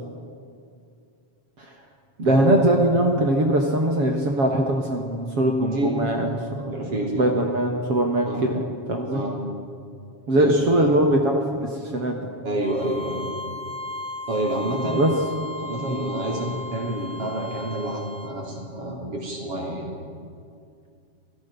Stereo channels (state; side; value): late; left; 7.3 ms